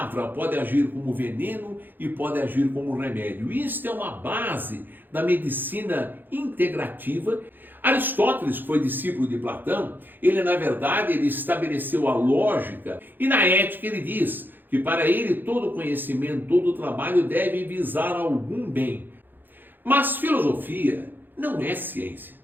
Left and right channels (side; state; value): left; late; 0.091 ms